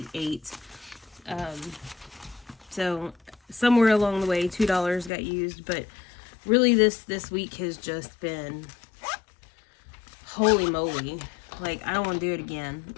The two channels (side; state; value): right; drops out; at 5.1 s